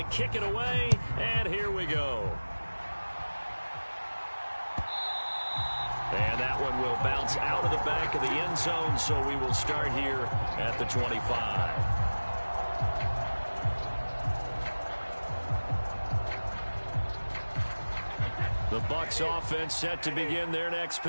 kick it away, and here we go. And that one will bounce out of the back of the end zone, so we will start here at the 25. The Bucs offense set to begin their next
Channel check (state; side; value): inverted; both; correlation -1.00